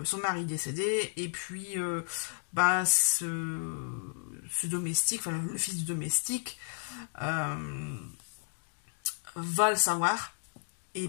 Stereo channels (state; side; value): silent; right; digital silence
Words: son mari décédé, et puis ce domestique, enfin le fils du domestique, va le savoir.